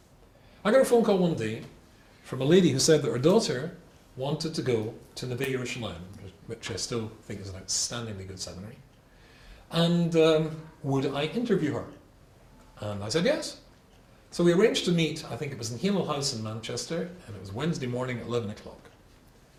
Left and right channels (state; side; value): identical; both; correlation 1.00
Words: I got a phone call one day from a lady who said that her daughter wanted to go to Neve Yerushalayim, which I still think is an outstandingly good seminary, and would I interview her? And I said yes. So we arranged to meet, I think it was in Hemel House in Manchester, and it was Wednesday morning at 11 o'clock.